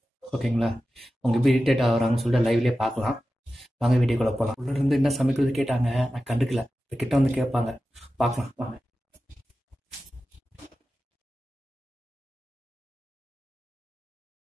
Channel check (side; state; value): both; normal; correlation 0.93